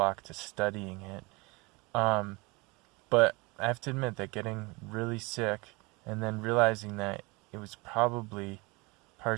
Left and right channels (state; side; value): quieter; left; 26.0 dB